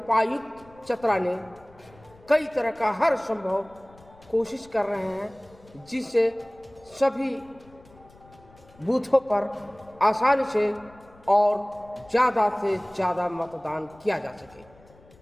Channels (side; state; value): left; noise; rumble, 26 dB below the sound